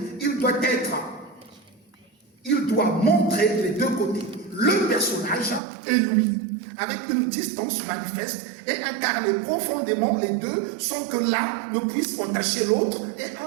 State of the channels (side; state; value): left; drops out; at 5.6 s